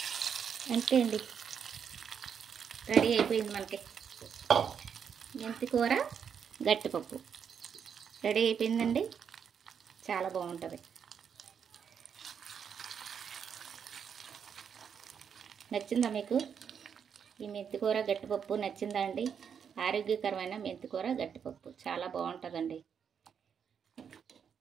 అంతే అండి, రెడీ అయిపోయింది మనకి మెంతి కూర గట్టిపప్పు. రెడీ అయిపోయిందండి, చాలా బాగుంటుంది. నచ్చిందా మీకు ఈ మెంతికూర గట్టిపప్పు? నచ్చిందా అండి? ఆరోగ్యకరమైన మెంతికూర గట్టిపప్పు చాలా బాగుంటుందండి.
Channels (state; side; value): quieter; left; 7.4 dB